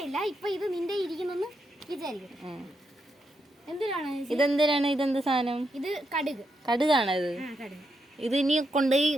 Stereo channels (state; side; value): normal; both; correlation 0.82